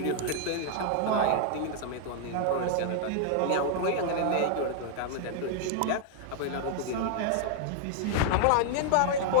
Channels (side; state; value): both; different; correlation 0.00